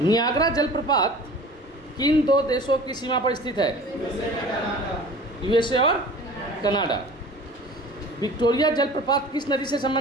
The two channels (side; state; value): both; normal; correlation 0.42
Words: नियाग्रा जलप्रपात किन दो देशों की सीमा पर स्थित है? यूएसए और कनाडा। विक्टोरिया जलप्रपात किस नदी से